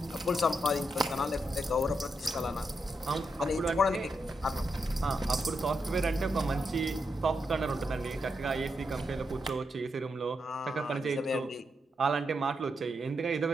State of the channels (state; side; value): normal; both; correlation 0.83